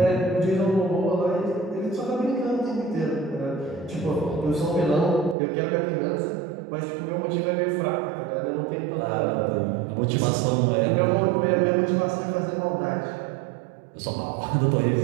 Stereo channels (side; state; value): left; drops out; at 5.4 s